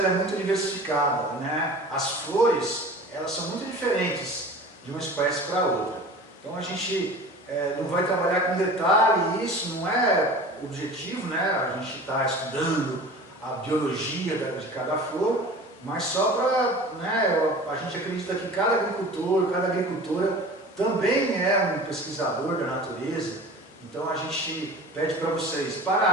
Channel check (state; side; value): normal; both; correlation 0.39